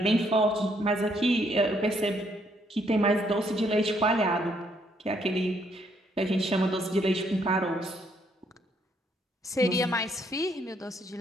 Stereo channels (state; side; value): normal; both; correlation 0.70